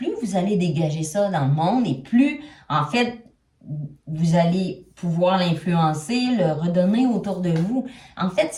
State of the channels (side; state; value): both; identical; correlation 1.00